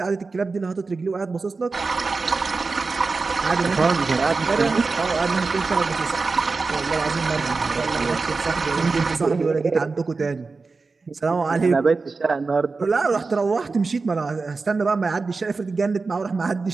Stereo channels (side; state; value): left; quieter; 4.1 dB